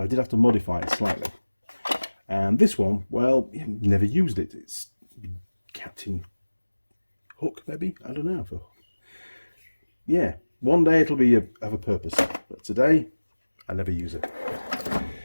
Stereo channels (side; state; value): both; inverted; correlation -1.00